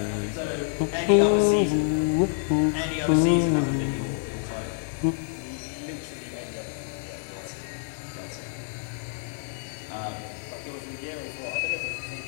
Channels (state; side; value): silent; right; digital silence